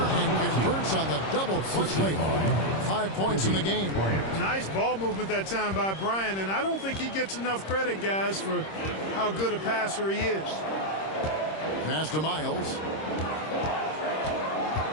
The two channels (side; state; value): right; late; 26 ms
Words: converts on the double clutch layup. 5 points in the game. Nice ball movement that time by Bryant, and I don't think he gets enough credit, guys, for how good a passer he is. Pass to Miles.